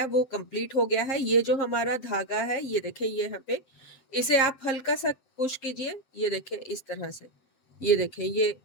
वो कंप्लीट हो गया है। ये जो हमारा धागा है ये देखिए, ये यहाँ पे इसे आप हल्का सा पुश कीजिए, ये देखिए इस तरह से, ये देखें ये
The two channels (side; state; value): right; late; 7.6 ms